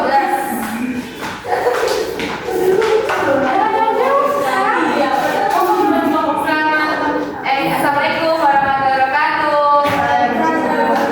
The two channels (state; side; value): identical; both; correlation 1.00